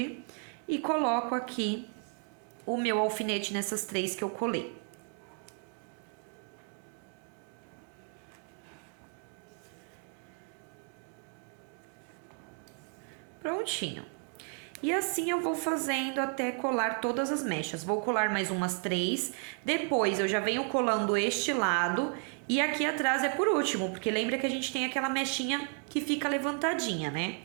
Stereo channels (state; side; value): quieter; left; 38.5 dB